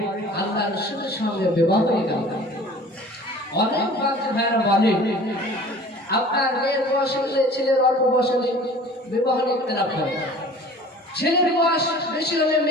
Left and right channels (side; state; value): both; normal; correlation 0.45